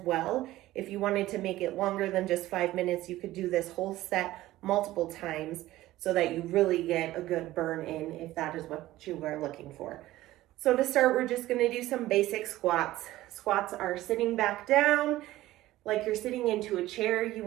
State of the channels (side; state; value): left; quieter; 16.0 dB